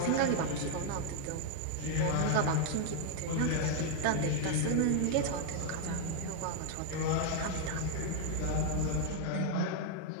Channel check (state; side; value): different; both; correlation 0.00